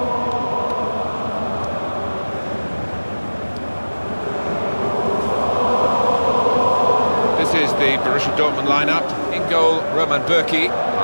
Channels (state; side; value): inverted; both; correlation -1.00